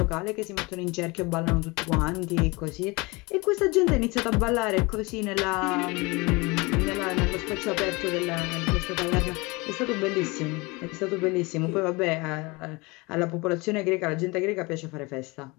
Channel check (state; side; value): quieter; right; 25.3 dB